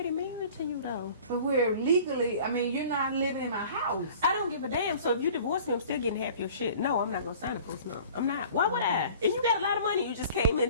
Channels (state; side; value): inverted; both; correlation -0.46